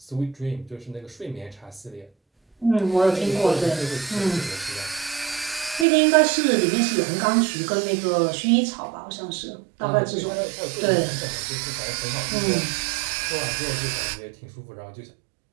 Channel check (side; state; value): left; drops out; at 5.9 s